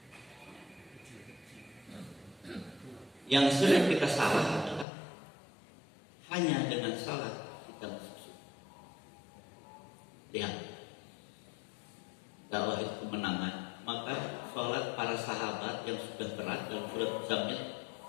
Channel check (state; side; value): drops out; right; at 4.9 s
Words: Yang sering kita salah adalah hanya dengan salat kita masuk surga. Lihat, dakwah itu kemenangan. Maka sholat para sahabat yang sudah berat dalam surat Muzammil,